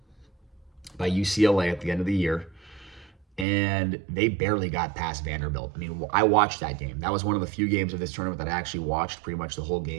UCLA at the end of the year. And they barely got past Vanderbilt. I mean, I watched that game. That was one of the few games of this tournament that I actually watched pretty much the whole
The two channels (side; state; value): left; drops out; at 3.5 s